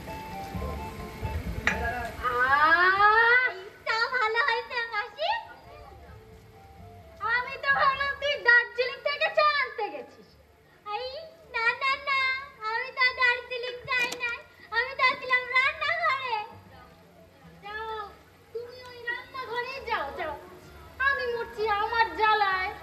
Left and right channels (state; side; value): identical; both; correlation 1.00